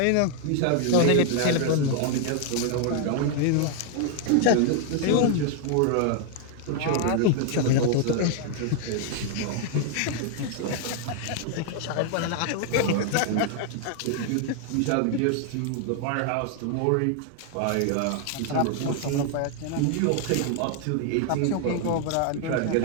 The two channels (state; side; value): different; both; correlation 0.00